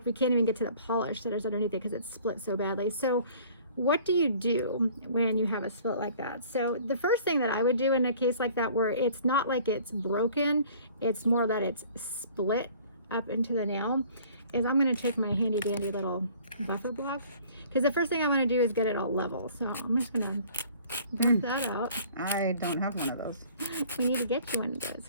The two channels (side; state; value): both; inverted; correlation -0.52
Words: we can't even get to the polish that is underneath it because it's split so badly. So what do you do when you have a split like that? So the first thing that I would do in a case like that, where it's not like it's broken, it's more that it's split up into the nail, is I'm going to take my handy dandy little buffer block, because the first thing I want to do is get it all level. So I'm just going to buff that out. I don't have one of those. We need to get you one of those,